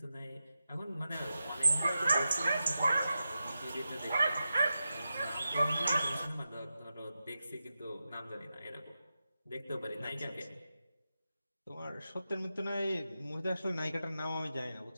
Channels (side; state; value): both; inverted; correlation -0.91